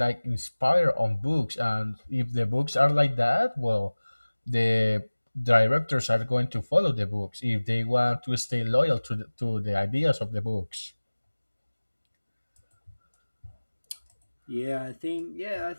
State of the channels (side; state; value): both; inverted; correlation -1.00